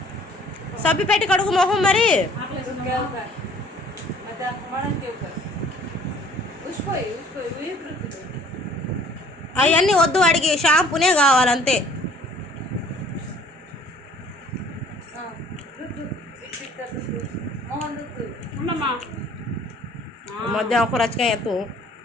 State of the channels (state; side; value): normal; both; correlation 0.54